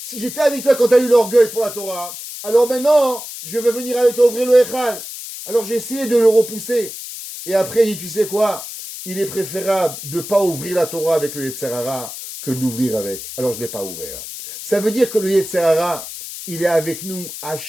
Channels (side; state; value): left; noise; hiss, 10 dB below the sound